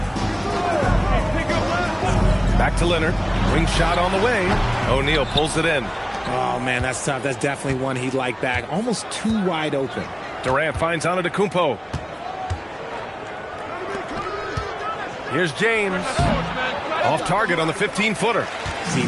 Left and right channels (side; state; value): both; identical; correlation 1.00